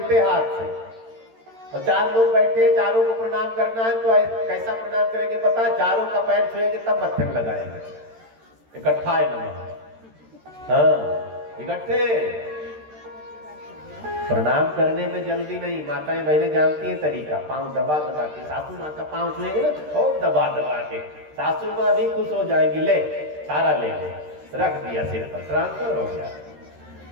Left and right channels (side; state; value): left; late; 13 ms